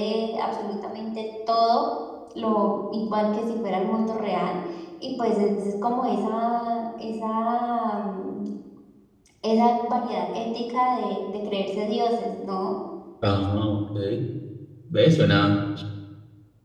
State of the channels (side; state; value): both; identical; correlation 1.00